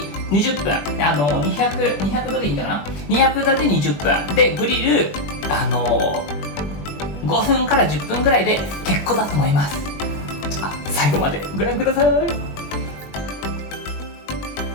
20分200度でいいんだかな、200度で20分でグリル5分から10分くらいで結構だと思います。じゃあ最後までご覧ください。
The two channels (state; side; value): late; right; 21 ms